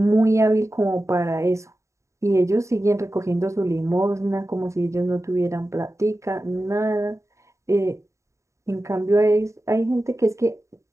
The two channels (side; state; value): left; late; 0.14 ms